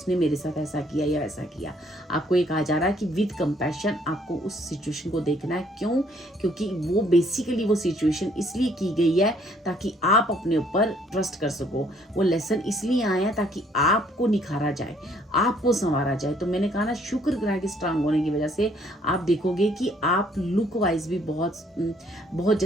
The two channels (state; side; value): normal; both; correlation 0.64